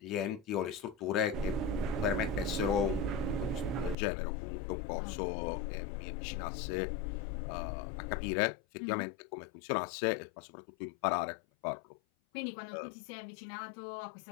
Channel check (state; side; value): drops out; right; at 4.0 s